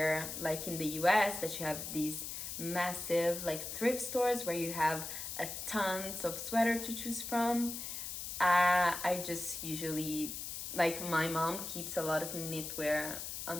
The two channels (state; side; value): noise; left; hiss, 6 dB below the sound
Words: like in the US, that you have these massive like thrift stores where you have a tons of sweater to choose from. I just usually, like, my mom keeps a lot of knitwear